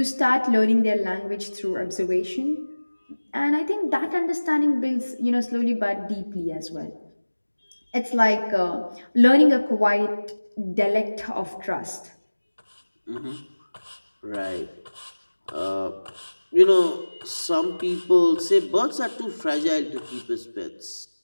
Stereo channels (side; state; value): both; inverted; correlation -1.00